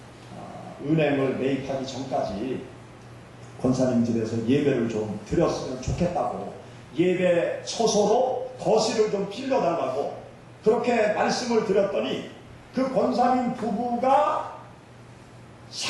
은행을 매입하기 전까지 권사님 집에서 예배를 좀 드렸으면 좋겠다고 예배 처소로 거실을 좀 빌려달라고 그렇게 말씀을 드렸더니 그 권사님 부부가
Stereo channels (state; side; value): identical; both; correlation 1.00